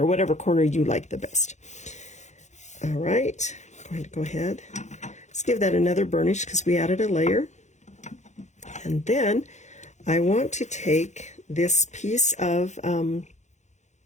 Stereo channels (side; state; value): right; late; 0.34 ms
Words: whatever corner you like the best. All right, I'm going to go ahead. Let's give that another burnish because we added a layer. And then I want to take this piece of